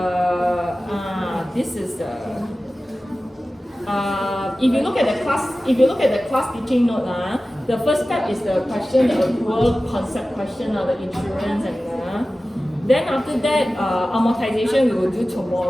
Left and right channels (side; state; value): both; normal; correlation 0.95